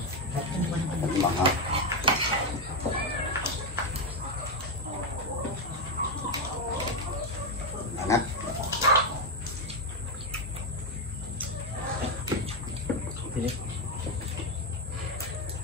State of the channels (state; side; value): normal; both; correlation 0.06